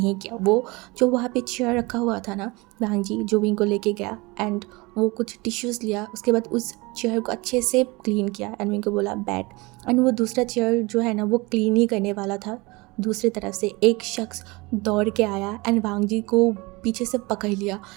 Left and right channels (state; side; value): quieter; left; 24.4 dB